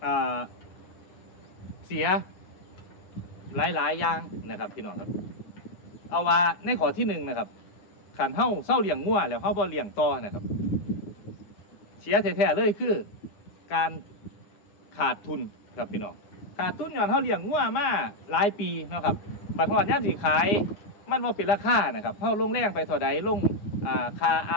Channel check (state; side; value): late; right; 9.7 ms